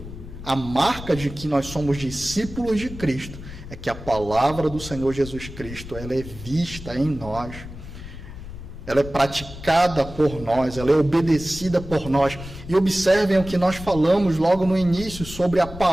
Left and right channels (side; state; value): left; noise; rumble, 12 dB below the sound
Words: a marca de que nós somos discípulos de Cristo, é que a palavra do Senhor Jesus Cristo, ela é vista em nós, ela é praticada por nós, ela é obedecida por nós. E observem o que nós falamos logo no início sobre a